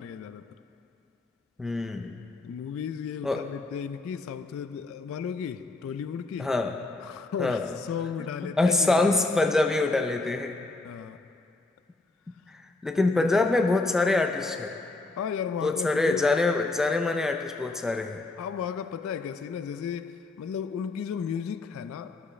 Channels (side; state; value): right; quieter; 3.1 dB